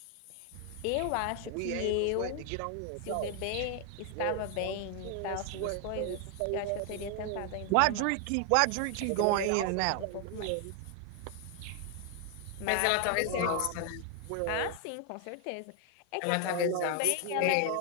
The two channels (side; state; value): both; different; correlation 0.00